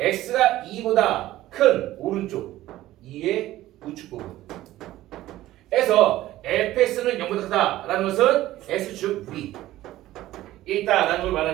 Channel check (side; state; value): left; quieter; 15.3 dB